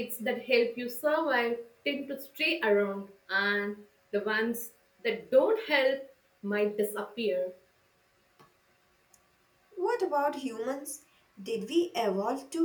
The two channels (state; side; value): identical; both; correlation 1.00